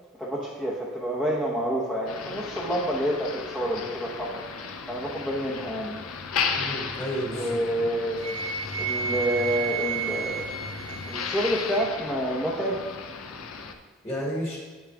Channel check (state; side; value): normal; both; correlation 0.42